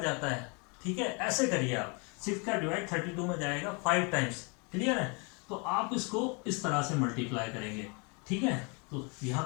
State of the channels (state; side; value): quieter; right; 32.7 dB